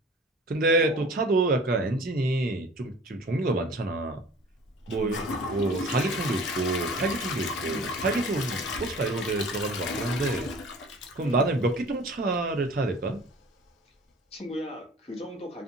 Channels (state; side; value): normal; both; correlation 0.45